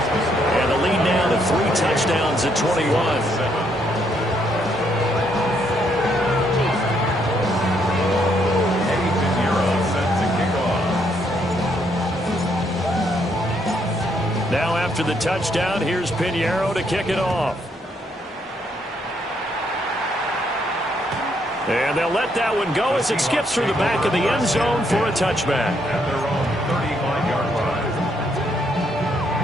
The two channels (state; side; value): normal; both; correlation 0.73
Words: And the lead now to 3 touchdowns at 21. Now after the touchdown, here's Piñeiro to kick it off. And they'll let that one go as it skips through the back of the end zone for a touchback. At their own 35-yard line.